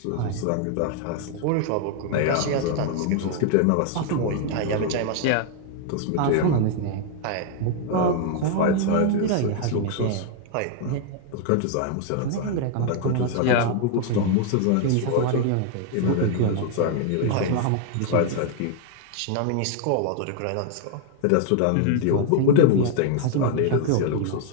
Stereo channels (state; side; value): different; both; correlation 0.00